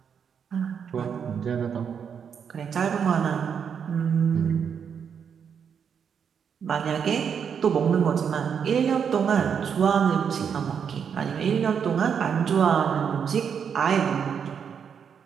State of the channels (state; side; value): quieter; left; 7.2 dB